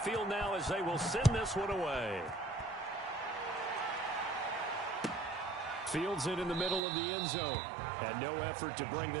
now as they will send this one away. Fields it in the middle of the end zone. And no effort to bring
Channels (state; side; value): drops out; left; at 6.8 s